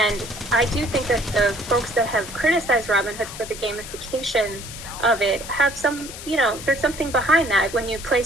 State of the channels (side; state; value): left; noise; hiss, 12 dB below the sound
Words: I do think that the folks that have criticized Robinhood for the gamification of it have some, there's something behind that. When you